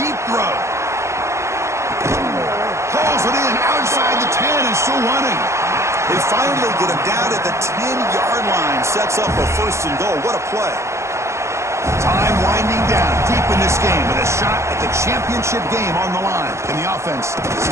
throw. Pulls it in outside the 10 and still running. They finally get him down at the 10-yard line. Sets up a 1st and goal. What a play. Time winding down deep in this game with a shot at the championship game on the line. Can the offense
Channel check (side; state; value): left; late; 0.14 ms